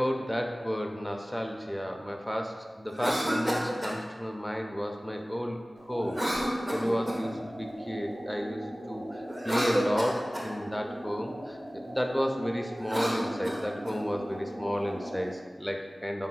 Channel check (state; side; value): normal; both; correlation 0.98